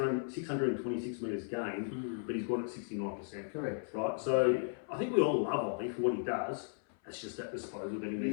metres gained, but he's got it 69%. Correct. Right? So I think we all love Ollie for what he does. It's just that disposal that he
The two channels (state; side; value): silent; right; 54 dB below the other